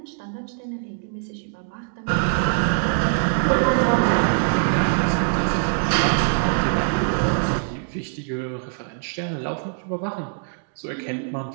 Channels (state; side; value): silent; left; digital silence